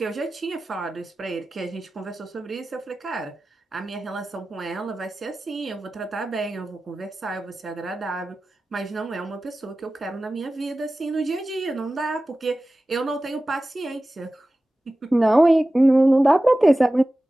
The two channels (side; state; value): both; normal; correlation 0.96